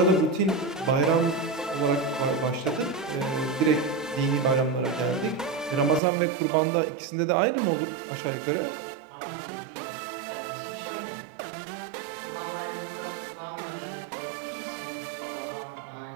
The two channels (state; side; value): drops out; left; at 6.0 s